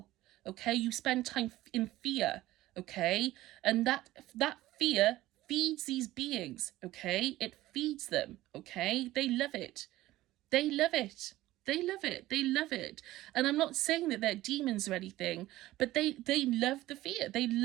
Okay, you spend time in fear. Okay, and that fear feeds these beings, okay? It feeds them, okay? They love it. They love it. They love it. They love it. And I'm not saying that they're demons or anything, but they love the fear. They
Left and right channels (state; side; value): quieter; left; 16.3 dB